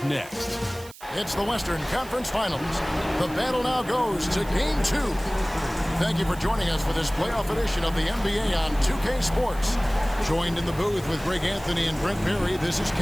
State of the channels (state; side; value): noise; right; hiss, 19 dB below the sound